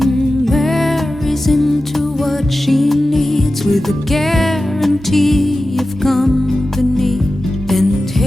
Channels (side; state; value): both; normal; correlation 0.94